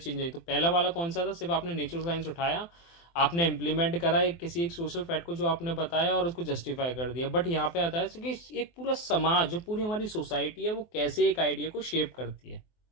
आई। तो पहला वाला कौन सा था, सिर्फ आपने नेचुरल साइंस उठाया, आपने इम्प्लीमेंट करा किसी एक सोशल फैक्ट को जो आपने बताया और उसको जस्टिफाई कर दिया। बट यहाँ पे आता है कि एक पूरा समाज, जो पूरी हमारी सोसाइटी है, वो कैसे एक आइडिया को शेप करती है।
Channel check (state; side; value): late; right; 24 ms